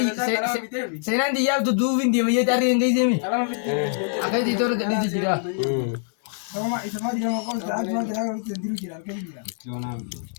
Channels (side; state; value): right; silent; digital silence